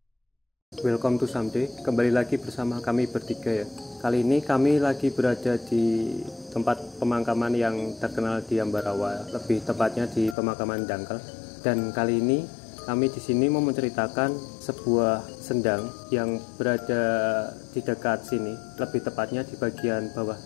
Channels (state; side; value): drops out; right; at 10.4 s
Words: Welcome to Someday. Kembali lagi bersama kami bertiga ya. Kali ini kami lagi berada di tempat pemakaman yang terkenal di Ambarawa, lebih tepatnya di pemakaman Dangkal. Dan kali ini kami di sini mau menceritakan sebuah sendang yang berada di dekat sini, lebih tepatnya di bagian bawah